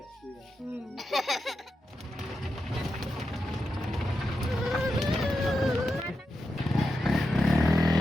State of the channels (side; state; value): both; normal; correlation 0.88